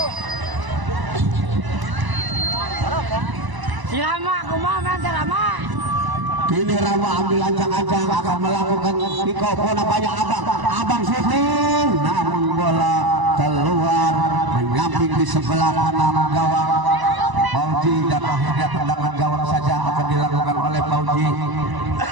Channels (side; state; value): left; late; 1.0 ms